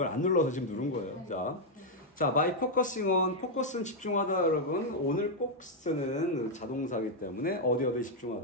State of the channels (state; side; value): normal; both; correlation -0.01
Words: 안 눌러서 지금 누른 거예요. 자, by focusing on, focus는 집중하다, 여러분. 오늘 꼭 쓰는 자동사이기 때문에 어디에